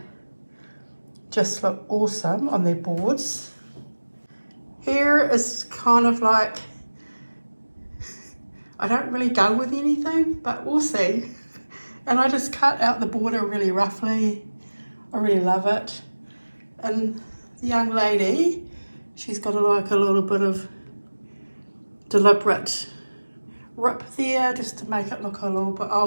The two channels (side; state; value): both; inverted; correlation -1.00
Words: just look awesome on their boards. Here is kind of like, I don't really go with anything, but we'll see. And I just cut out the border really roughly. I really love it. And the young lady, she's got like a little bit of deliberate rip there just to make it look a little bit